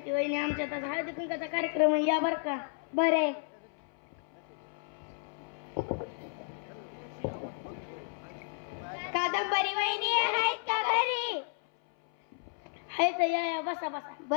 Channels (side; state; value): right; silent; 56 dB below the other